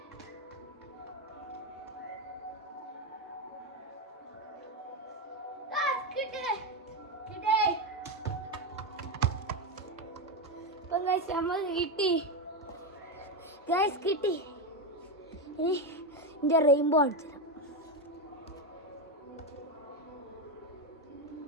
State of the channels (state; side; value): normal; both; correlation 0.10